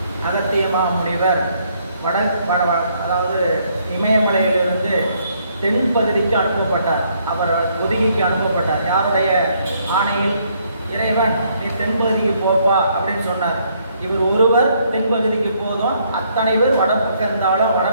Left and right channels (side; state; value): both; inverted; correlation -0.70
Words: அகத்தியமா முனிவர் அதாவது இமயமலையிலிருந்து தென்பகுதிக்கு அனுப்பப்பட்டார். அவர் ஒதுகிக்கு அனுப்பப்பட்டார். யாருடைய ஆணையில்? இறைவன் நீ தென்பகுதிக்கு போப்பா அப்படின்னு சொன்னார். இவர் ஒருவர் தென்பகுதிக்கு போதும், அத்தனை பேர் வடப்பக்கம் இருந்தாலும்